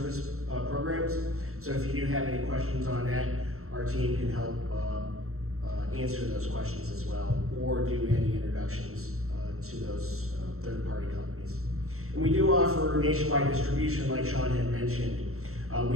programs. So if you do have any questions on that, our team can help answer those questions as well, or do any introductions to those third-party companies. And we do offer nationwide distribution, like Sean had mentioned.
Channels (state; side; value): late; left; 0.63 ms